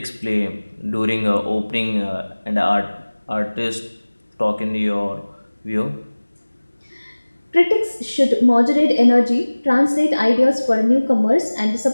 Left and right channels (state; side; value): inverted; both; correlation -1.00